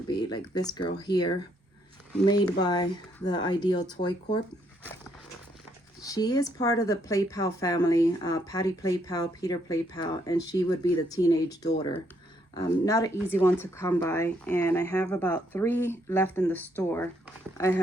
be like this girl here, made by the Ideal Toy Corp. She is part of the Play Pal family, Patty Play Pal, Peter Play Pal, and she would be the teenage daughter. Not an easy one to come by, and I have about 3 left in the store. I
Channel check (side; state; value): both; normal; correlation 0.72